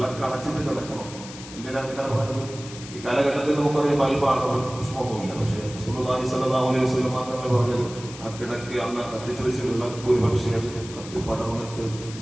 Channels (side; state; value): left; noise; hiss, 14 dB below the sound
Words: അണച്ചിട്ട് കിടക്കണം. എന്തിനാണ് ഇങ്ങനെ പറയുന്നത്? ഈ കാലഘട്ടത്തിൽ നമുക്കറിയാം ബൾബാണ്, പുഷ്പമൊന്നുമില്ല. പക്ഷേ റസൂലുള്ളാഹി സ്വല്ലല്ലാഹു അലൈഹി വസല്ലം തങ്ങൾ പറഞ്ഞത് ആ കിടക്ക് അന്ന് കത്തിച്ചു വെച്ച് വിളക്ക് ഒരു പക്ഷേ കത്തി പടർന്നിട്ട്